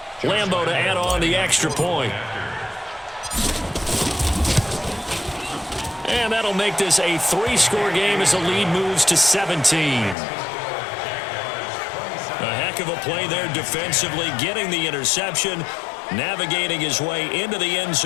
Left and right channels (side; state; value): right; drops out; at 10.2 s